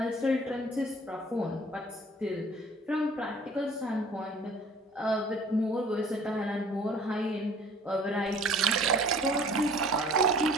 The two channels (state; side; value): normal; both; correlation 0.51